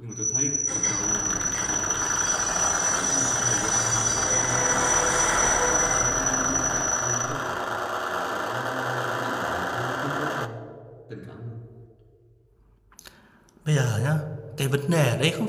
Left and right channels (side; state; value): both; identical; correlation 1.00